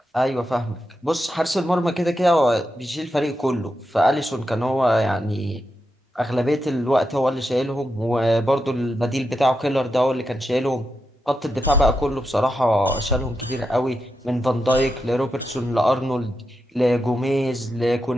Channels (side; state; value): both; normal; correlation 0.87